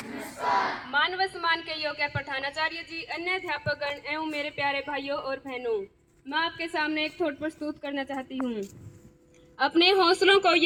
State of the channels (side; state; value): both; identical; correlation 1.00